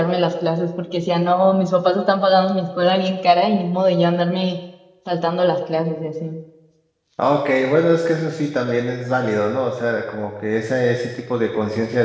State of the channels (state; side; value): identical; both; correlation 1.00